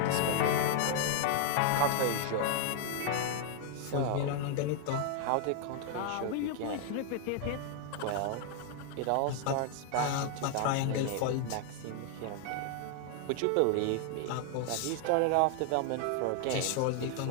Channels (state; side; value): different; both; correlation 0.00